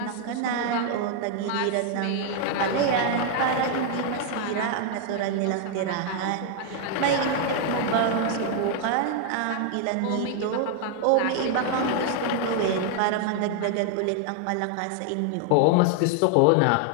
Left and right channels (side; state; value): both; different; correlation 0.00